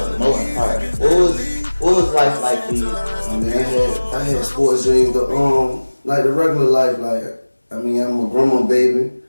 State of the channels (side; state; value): both; inverted; correlation -1.00